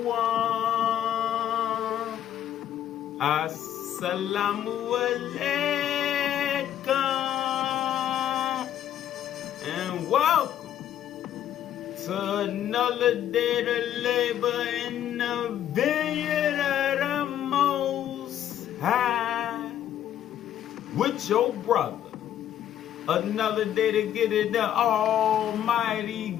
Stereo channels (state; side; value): quieter; right; 10.9 dB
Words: Assalamu alaikum. And welcome to another day to labor in the vineyard of the Most High with your brother. Another day to get in the almighty,